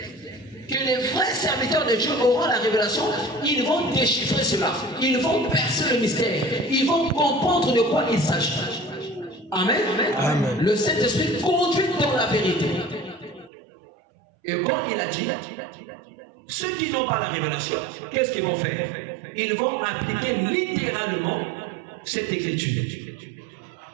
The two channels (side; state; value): left; drops out; at 13.5 s